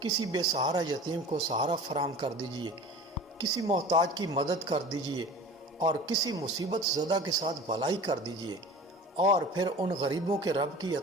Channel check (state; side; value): normal; both; correlation 0.39